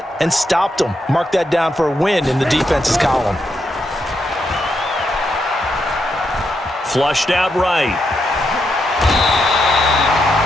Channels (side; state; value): both; normal; correlation 0.82